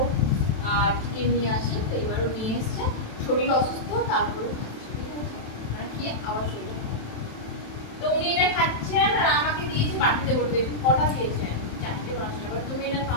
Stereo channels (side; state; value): right; late; 27 ms